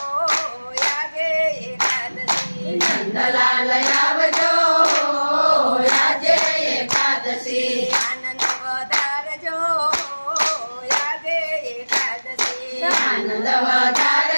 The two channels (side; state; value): both; inverted; correlation -1.00